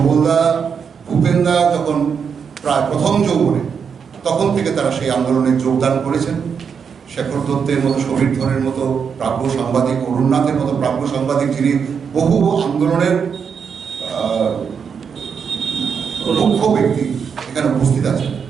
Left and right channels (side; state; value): left; quieter; 6.6 dB